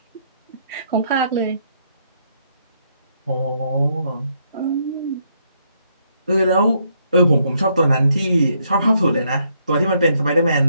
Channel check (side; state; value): both; inverted; correlation -0.73